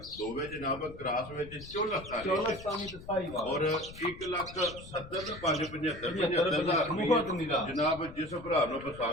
ਦੋਵੇਂ ਜਨਾਬ ਕ੍ਰਾਸ ਵਿੱਚ ਚੋਲਸਤਾਨੀ ਚੌਲਸਤਾਨੀ ਤੇ ਸਾਈ ਵਾਲਾ ਔਰ 1,70,575 ਬਹੁਤ ਨਿਰਾ। ਜਨਾਬ ਜਿਸ ਭਰਾ ਨੂੰ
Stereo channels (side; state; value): left; noise; rumble, 16 dB below the sound